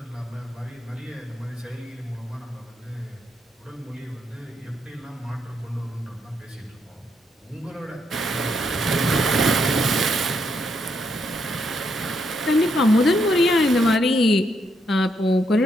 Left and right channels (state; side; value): normal; both; correlation 0.77